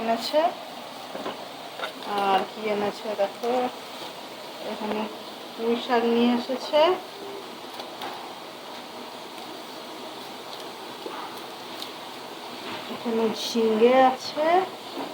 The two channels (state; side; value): identical; both; correlation 1.00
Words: এনেছে। আর কি এনেছে দেখো, এখানে পুঁই শাক নিয়ে এসেছে। এখানে ঝিঙে আছে,